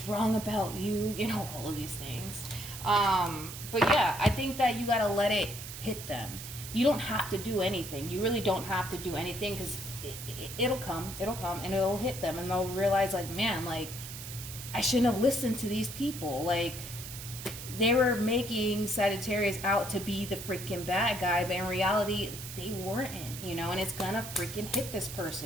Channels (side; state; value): right; noise; hiss, 10 dB below the sound